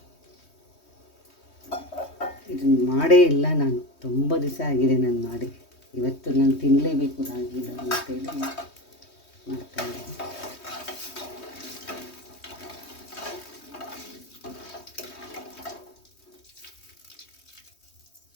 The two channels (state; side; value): late; right; 3.2 ms